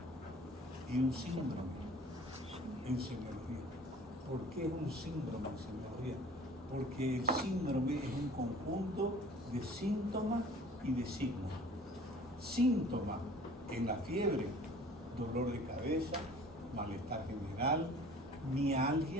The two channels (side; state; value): both; normal; correlation 0.48